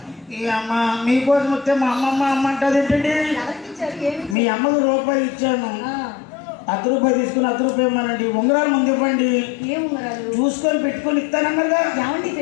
ఈ అమ్మ మీకోసం వస్తే మా అమ్మమ్మ అమ్మ అంటది ఏంటండి? మీ అమ్మకు రూపాయి ఇచ్చాను, రూపాయి తీసుకుని రూపాయి ఇవ్వమానండి. ఉంగరాలు ముందు ఇవ్వండి, చూసుకొని పెట్టుకొని ఇస్తానన్నారుగా. ఏమండి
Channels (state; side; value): drops out; right; at 4.4 s